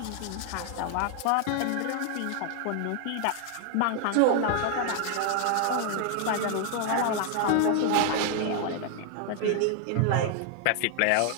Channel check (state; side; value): different; both; correlation 0.00